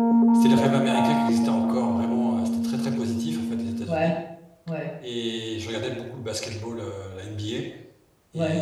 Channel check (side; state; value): both; identical; correlation 1.00